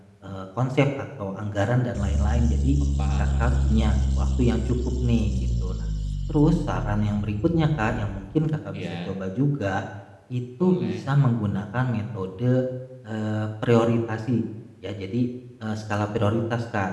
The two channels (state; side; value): identical; both; correlation 1.00